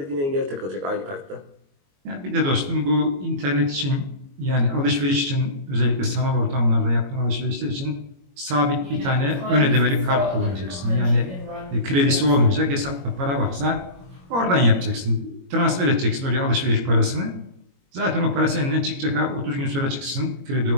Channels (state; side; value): late; left; 22 ms